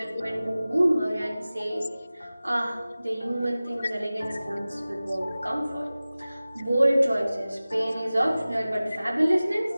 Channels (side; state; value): both; inverted; correlation -0.97